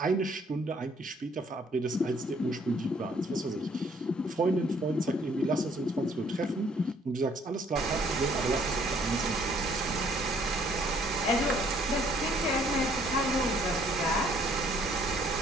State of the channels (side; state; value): both; normal; correlation 0.62